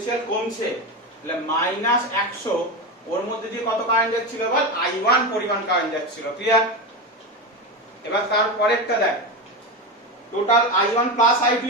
কমছে, তাহলে -100 ওর মধ্যে দিয়ে কত কারেন্ট যাচ্ছিল বল I1 পরিমাণ কারেন্ট যাচ্ছিল। ক্লিয়ার? এবার তার পরেরটা দেখ, টোটাল I1 প্লাস I2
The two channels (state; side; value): normal; both; correlation 0.18